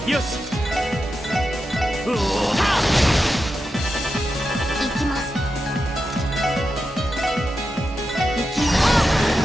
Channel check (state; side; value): normal; both; correlation 0.89